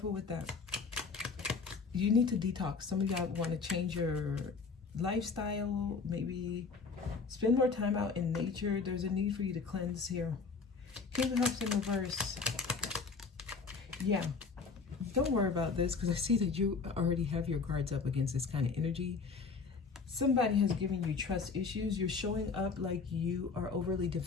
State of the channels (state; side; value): quieter; right; 4.8 dB